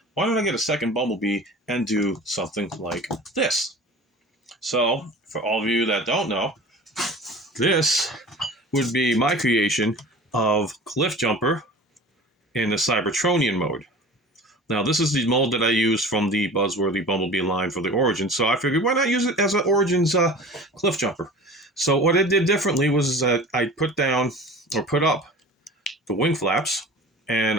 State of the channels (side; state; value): both; normal; correlation 0.39